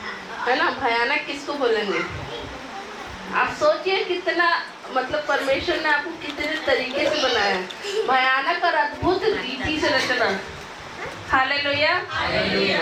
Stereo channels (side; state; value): both; identical; correlation 1.00